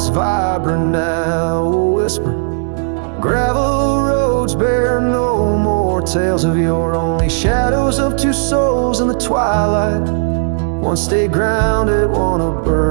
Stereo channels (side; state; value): left; silent; digital silence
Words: vibrant, now a whisper. Gravel roads bear no more more tales of yore, only shadows of two souls in the twilight. One stayed grounded, one a